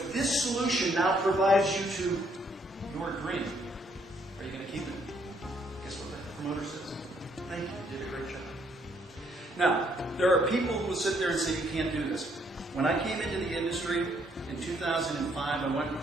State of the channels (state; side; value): normal; both; correlation 0.70